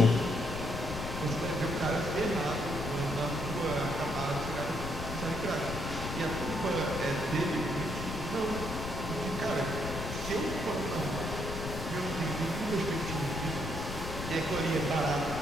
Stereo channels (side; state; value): left; noise; rumble, 6 dB below the sound